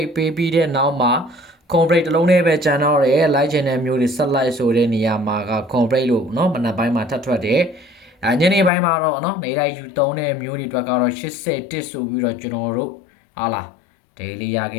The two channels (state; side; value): drops out; right; at 8.7 s